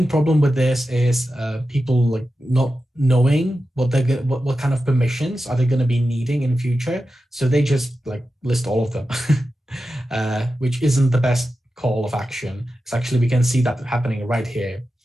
problem with this is people like not knowing what kind of permissions are they going to be needing in future. So they just like list all of them, which isn't the best call of action. It's actually, we can see that happening right here.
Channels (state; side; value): normal; both; correlation 0.92